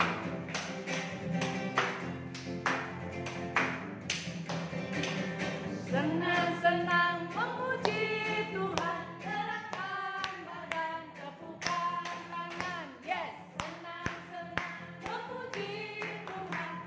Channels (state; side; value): identical; both; correlation 1.00